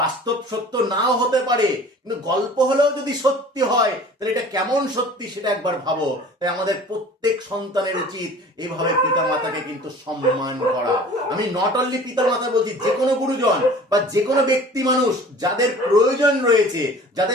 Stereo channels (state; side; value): normal; both; correlation 0.45